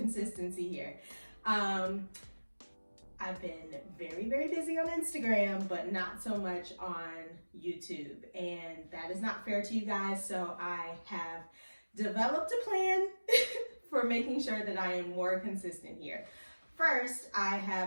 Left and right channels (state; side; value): inverted; both; correlation -1.00